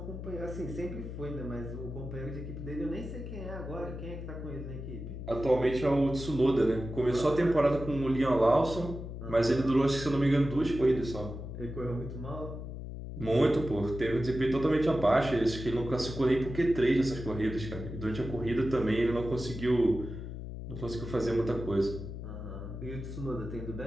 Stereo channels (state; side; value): noise; left; hum, 8 dB below the sound